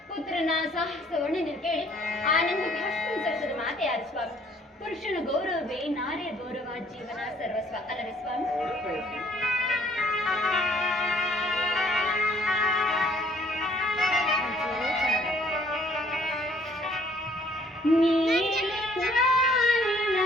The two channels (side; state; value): both; normal; correlation 0.61